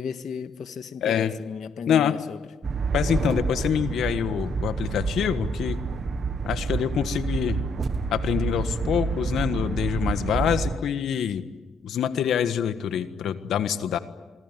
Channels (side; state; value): right; quieter; 3.7 dB